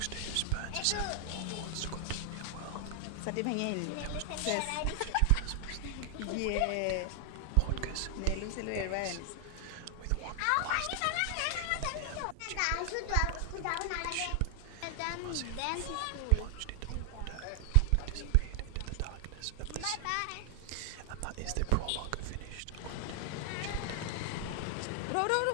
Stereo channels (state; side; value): different; both; correlation 0.00